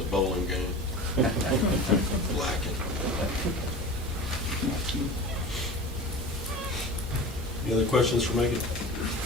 bowling game. Lacking. Any other questions for Megan?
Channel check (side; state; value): both; normal; correlation 0.35